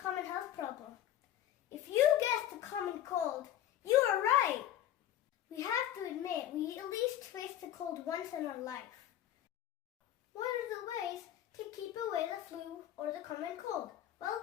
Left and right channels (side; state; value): right; quieter; 11.9 dB